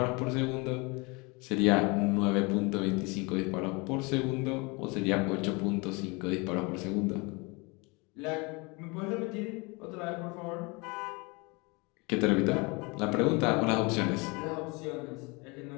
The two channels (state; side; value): quieter; right; 28.0 dB